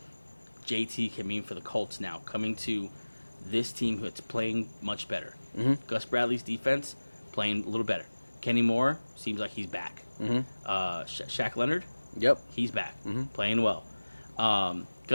JT can mean for the Colts now, coming to this team that's playing much better. Mm-hmm. Gus Bradley's defense playing a little better. Kenny Moore seems like he's back. Mm-hmm. Shaq Leonard, Yep. he's back, Mm-hmm. playing well.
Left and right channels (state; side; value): inverted; both; correlation -1.00